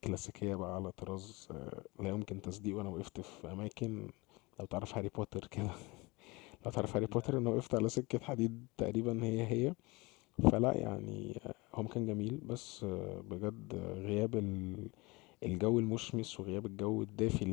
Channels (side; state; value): right; quieter; 24.6 dB